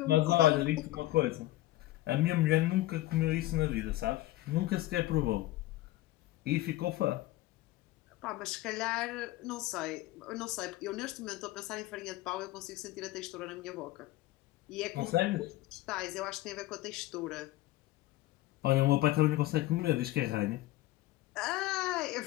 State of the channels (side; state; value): right; quieter; 16.5 dB